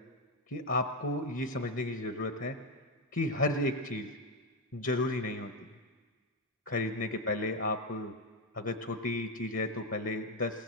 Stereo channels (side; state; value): both; normal; correlation 0.08